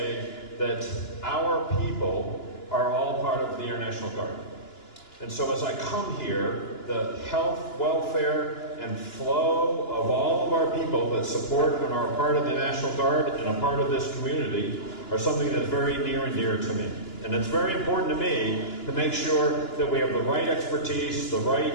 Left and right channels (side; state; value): right; late; 2.9 ms